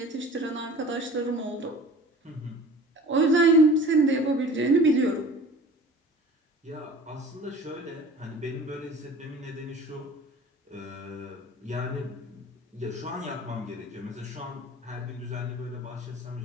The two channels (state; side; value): normal; both; correlation 0.43